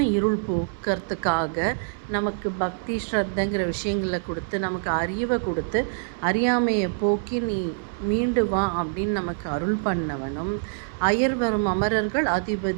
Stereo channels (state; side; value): silent; left; 62 dB below the other